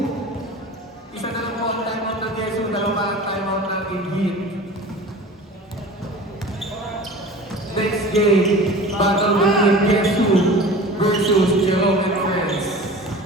Isa na lang po ang timeout ng Yesu. Dalawa ang timeout ng Ingrid. Next game, battle between Yesu versus Jerome and Friends.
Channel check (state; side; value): normal; both; correlation 0.38